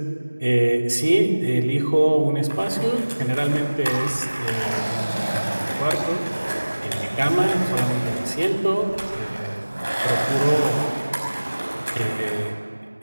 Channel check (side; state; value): both; inverted; correlation -1.00